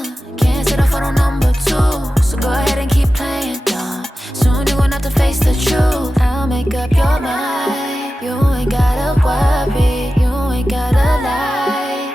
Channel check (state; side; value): normal; both; correlation 0.94